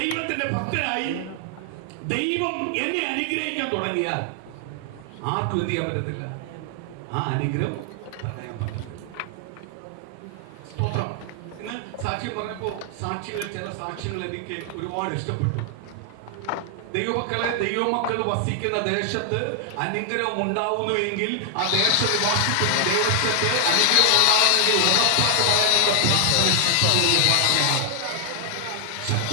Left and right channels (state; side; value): different; both; correlation 0.00